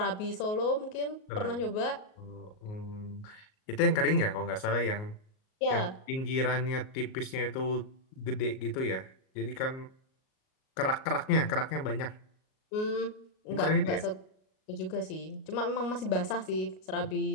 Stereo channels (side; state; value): right; late; 38 ms